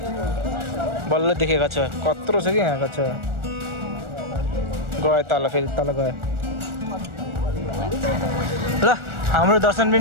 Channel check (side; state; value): left; late; 1.4 ms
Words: बल्ल देखेँ कच्छा कत्रो छ कि यहाँ कच्छा गयो तल फेरि तल गयो ल हाम्रो दर्शन